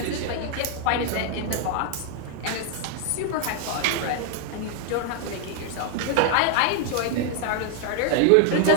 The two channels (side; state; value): both; different; correlation 0.00